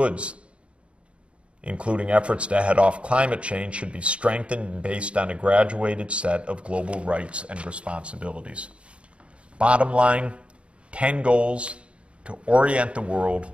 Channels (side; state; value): left; late; 0.060 ms